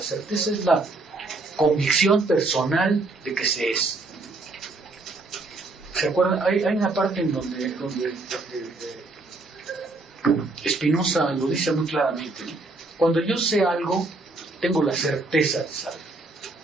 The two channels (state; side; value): quieter; left; 3.2 dB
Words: certeza es la convicción personal de que se es. ¿Se acuerdan? Hay una parte en donde Spinoza lo dice muy claramente, ¿no? Cuando yo sé algo, tengo la certeza de saber.